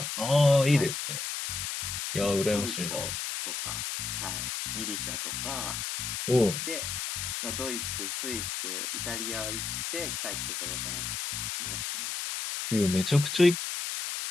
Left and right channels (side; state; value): left; noise; hiss, 3 dB below the sound